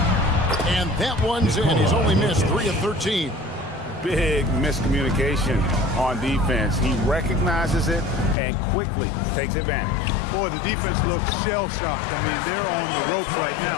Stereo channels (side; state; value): right; drops out; at 8.3 s